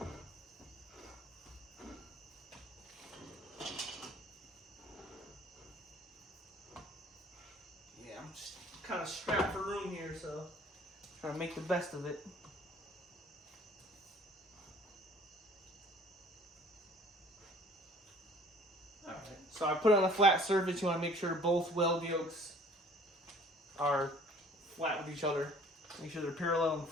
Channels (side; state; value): both; normal; correlation 0.52